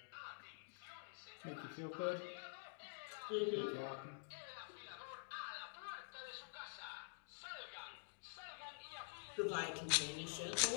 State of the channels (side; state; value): right; silent; digital silence